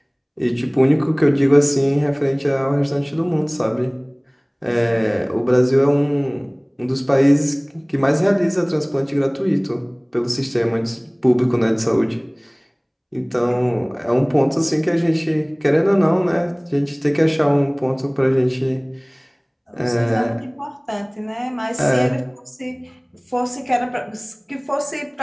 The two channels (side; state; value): both; identical; correlation 1.00